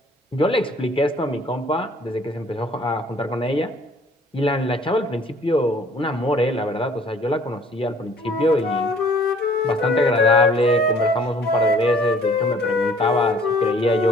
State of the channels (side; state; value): both; normal; correlation 0.56